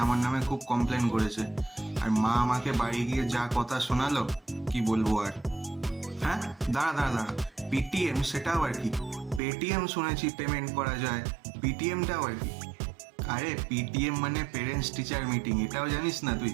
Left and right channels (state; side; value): drops out; left; at 9.4 s